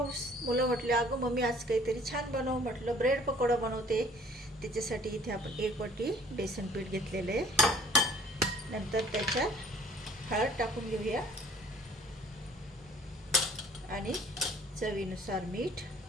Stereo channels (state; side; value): normal; both; correlation 0.55